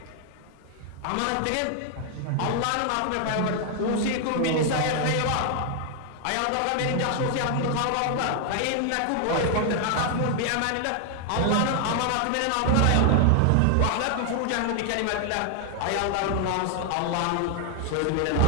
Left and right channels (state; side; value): different; both; correlation 0.00